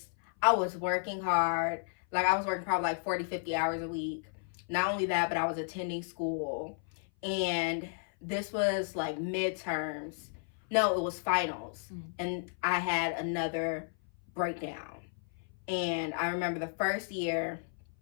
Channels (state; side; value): silent; right; 56 dB below the other